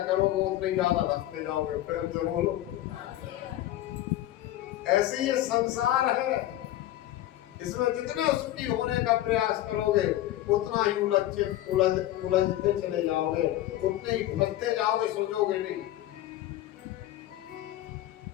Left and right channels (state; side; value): quieter; right; 14.2 dB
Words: करोगे उतने ज्यादा धसते जाओगे। प्रेम से बोलो। ऐसे ये संसार है, इसमें जितना सुखी होने का प्रयास करोगे उतना ही उलझते चले जाओगे, उतने ही फंसते जाओगे, सुलझोगे नहीं।